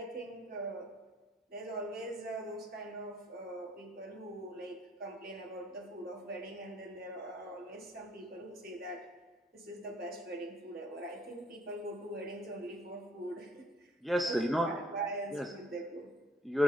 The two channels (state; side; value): normal; both; correlation 0.62